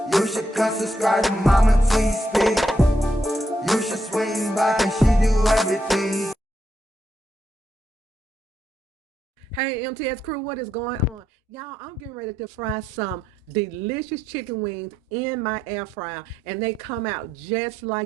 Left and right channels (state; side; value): normal; both; correlation 0.80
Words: You should come subscribe to Mama T Speak. You should swing by, and she do everything. Hey MTS crew, what is going on? Y'all, I'm getting ready to fry some delicious chicken wings in my air fryer, and they come out just